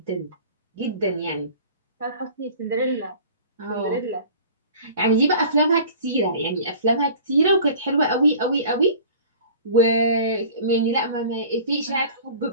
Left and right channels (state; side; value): inverted; both; correlation -0.43